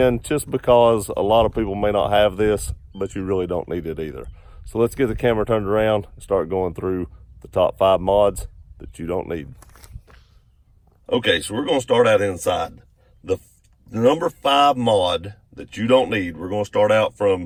just because a lot of people may not have this, but you really don't need it either. So let's get the camera turned around and start going through the top 5 mods that you don't need. Okay, so we're going to start out inside. The number 5 mod that you don't need, we're going to start out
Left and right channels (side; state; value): both; identical; correlation 1.00